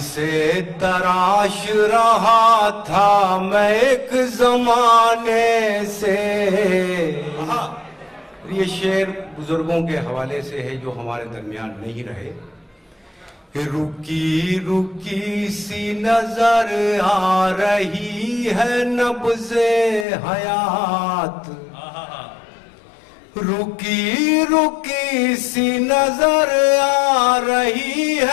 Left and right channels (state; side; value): drops out; right; at 20.1 s